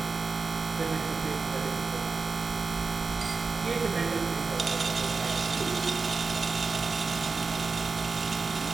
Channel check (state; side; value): quieter; left; 4.4 dB